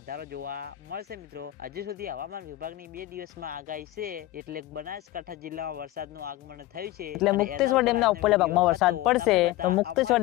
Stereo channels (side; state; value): right; quieter; 16.3 dB